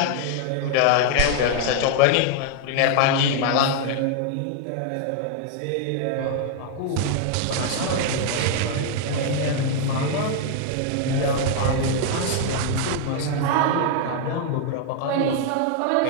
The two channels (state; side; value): different; both; correlation 0.00